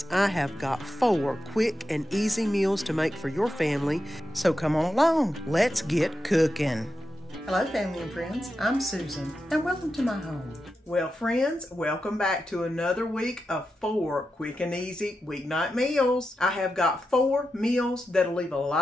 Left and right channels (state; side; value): normal; both; correlation 0.89